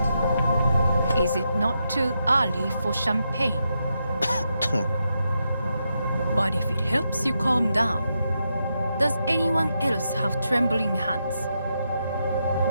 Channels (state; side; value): inverted; both; correlation -0.84